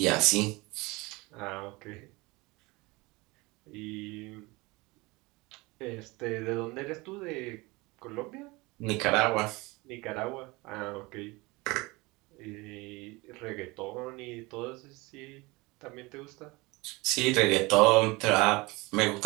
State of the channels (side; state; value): left; quieter; 23.8 dB